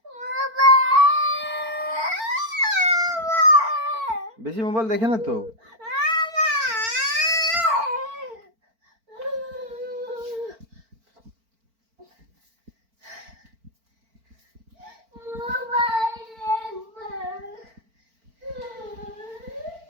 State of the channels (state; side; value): late; left; 4.5 ms